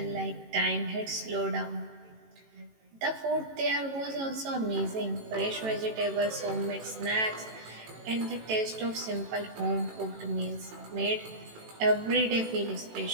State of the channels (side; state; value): left; late; 18 ms